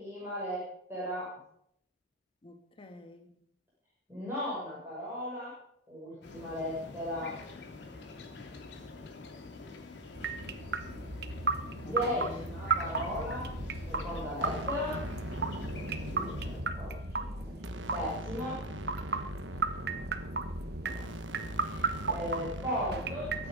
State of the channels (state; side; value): normal; both; correlation 0.09